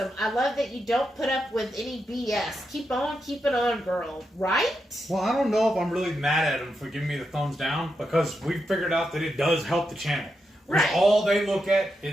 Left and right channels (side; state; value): both; normal; correlation 0.85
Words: I love that you don't put up with any BS. Keep on keeping on, girl." Right? Well, I don't know if I'm really mad at them for giving me the thumbs down, because we figured out that it does help the channel. Right. All they look at